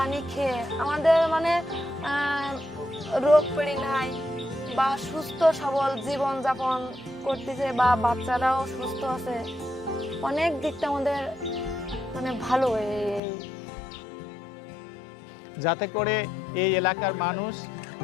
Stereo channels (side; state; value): right; drops out; at 13.2 s